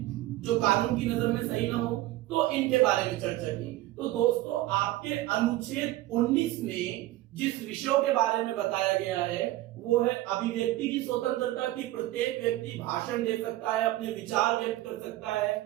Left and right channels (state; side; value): quieter; left; 16.6 dB